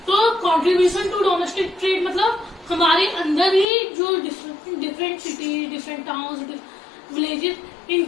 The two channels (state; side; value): drops out; right; at 3.7 s